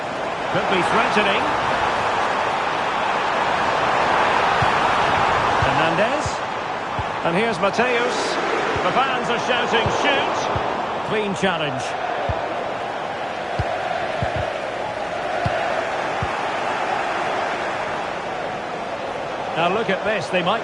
Could be threatening. Hernandez. And here's Mateus. The fans are shouting, shoot. Clean challenge. Now look at this. They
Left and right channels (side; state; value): both; identical; correlation 1.00